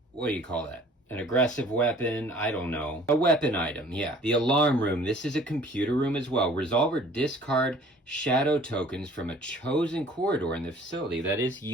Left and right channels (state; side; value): normal; both; correlation 0.52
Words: what do you call that? An aggressive weapon, I don't know. A weapon item, yeah. The alarm room, this is a computer room as well. Resolve or discard shadow tokens from a chosen corridor in the facility. That is